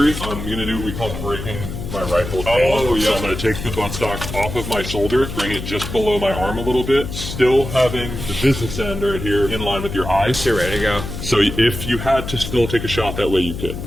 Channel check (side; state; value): left; noise; hum, 7 dB below the sound